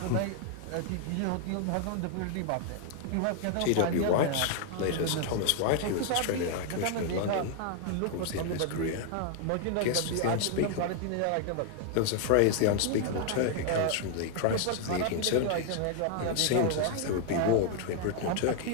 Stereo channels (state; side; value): different; both; correlation 0.00